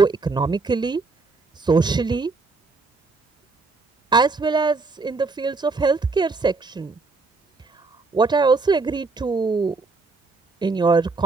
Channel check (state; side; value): quieter; left; 3.9 dB